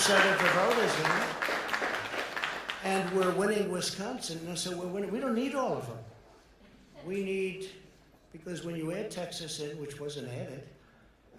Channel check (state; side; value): identical; both; correlation 1.00